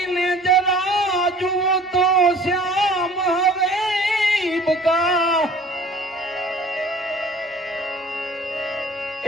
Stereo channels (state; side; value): normal; both; correlation 0.49